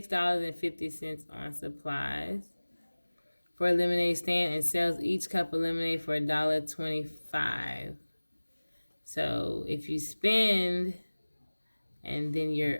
on supplies for a lemonade stand and sells each cup of lemonade for $1.25. So if you spend and then you're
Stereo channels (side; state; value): both; inverted; correlation -1.00